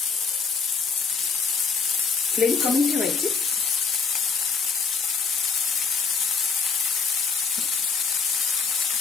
फ्लेम कमी ठेवायची।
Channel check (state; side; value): quieter; right; 5.3 dB